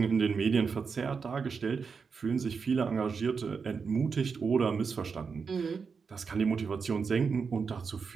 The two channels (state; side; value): quieter; left; 5.5 dB